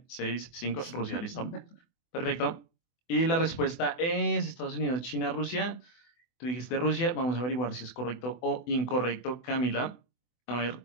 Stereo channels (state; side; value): late; right; 24 ms